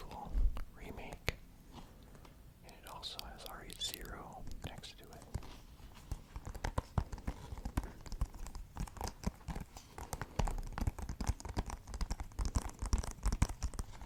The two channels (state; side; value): identical; both; correlation 1.00